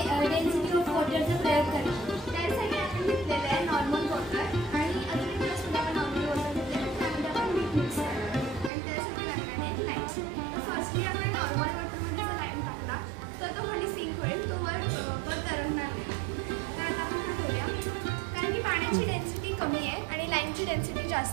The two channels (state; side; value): drops out; left; at 8.7 s